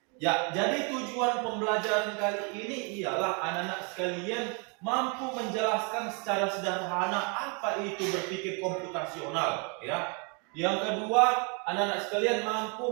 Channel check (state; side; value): quieter; left; 35.0 dB